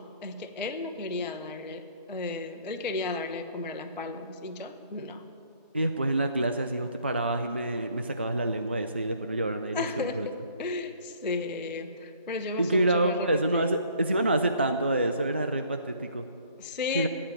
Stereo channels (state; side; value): inverted; both; correlation -0.59